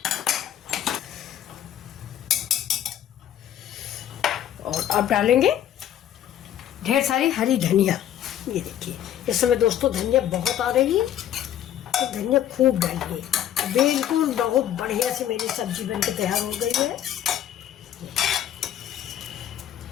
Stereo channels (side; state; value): right; quieter; 11.0 dB